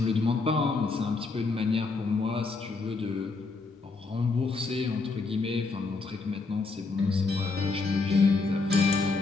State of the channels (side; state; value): right; quieter; 4.0 dB